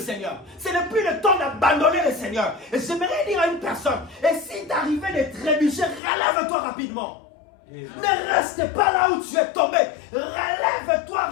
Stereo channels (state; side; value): drops out; right; at 6.0 s